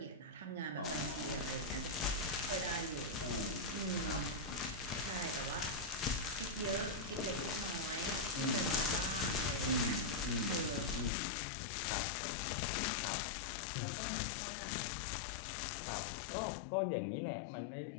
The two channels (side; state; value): right; drops out; at 11.1 s